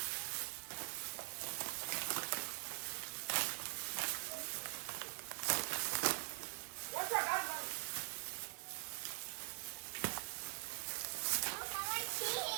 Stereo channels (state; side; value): silent; left; digital silence